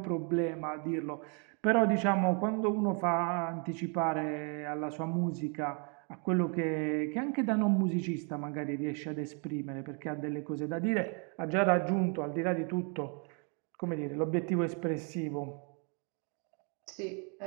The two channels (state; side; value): quieter; left; 38.0 dB